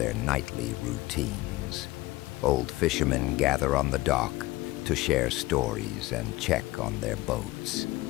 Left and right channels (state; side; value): quieter; right; 19.1 dB